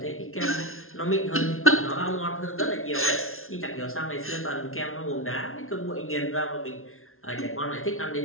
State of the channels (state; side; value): late; right; 0.62 ms